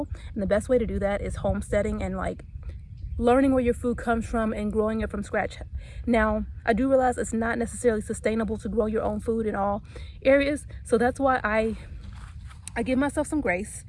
And the best way to do that is homesteading and learning where your food comes from and growing it from scratch. Now, I do realize it's not necessarily sustainable to grow your own food in all areas. So that's why I give myself some grace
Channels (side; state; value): both; identical; correlation 1.00